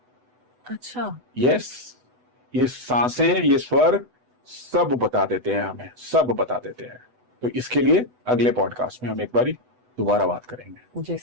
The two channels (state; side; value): late; left; 8.0 ms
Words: अच्छा। यस, ये सांसें, ये स्वर सब बता देते हैं हमें, सब बता देते हैं। तो इसके लिए अगले पॉडकास्ट में हम एक बारी दोबारा बात करेंगे। जी